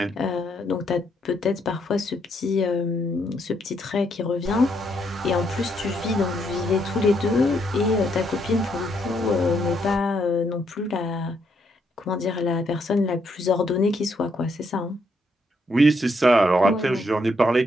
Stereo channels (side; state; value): both; normal; correlation 0.75